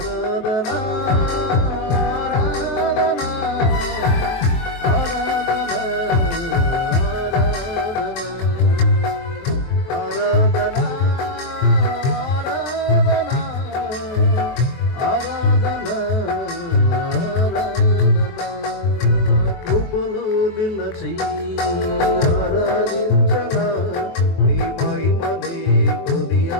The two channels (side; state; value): right; late; 23 ms